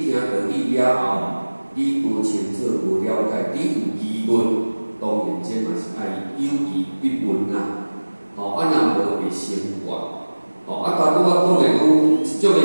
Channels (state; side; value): inverted; both; correlation -1.00